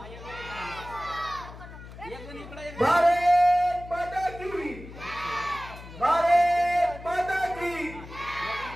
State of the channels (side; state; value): left; noise; hum, 15 dB below the sound